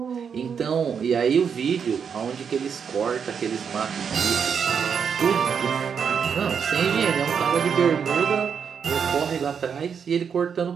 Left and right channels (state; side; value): quieter; left; 6.9 dB